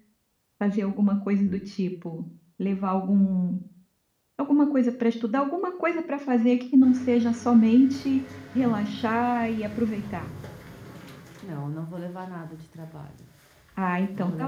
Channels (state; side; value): identical; both; correlation 1.00